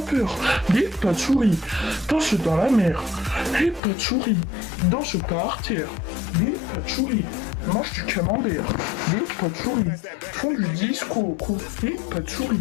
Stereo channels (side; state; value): right; drops out; at 3.8 s